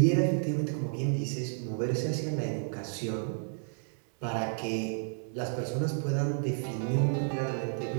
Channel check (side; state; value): left; silent; digital silence